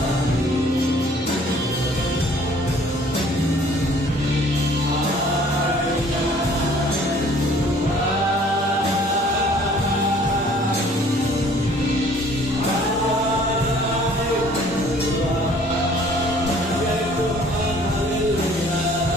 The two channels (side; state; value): both; normal; correlation 0.55